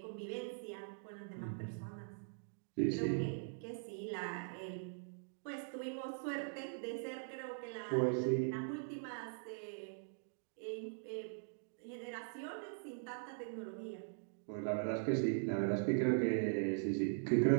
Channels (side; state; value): left; silent; digital silence